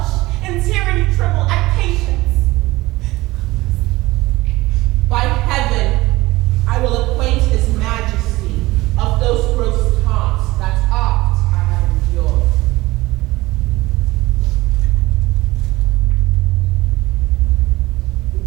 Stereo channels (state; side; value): quieter; left; 19.5 dB